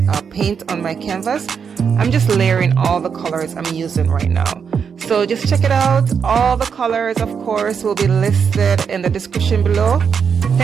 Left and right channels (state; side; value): quieter; left; 6.6 dB